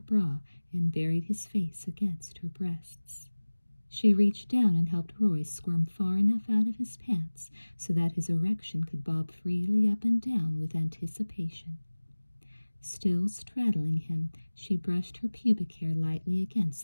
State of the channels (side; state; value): both; inverted; correlation -1.00